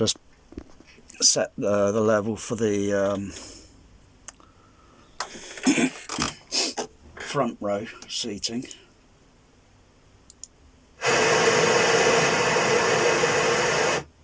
set the level for the front row seating.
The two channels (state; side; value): identical; both; correlation 1.00